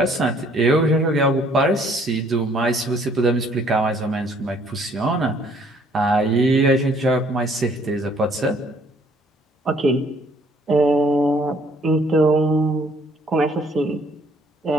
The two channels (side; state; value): both; normal; correlation 0.62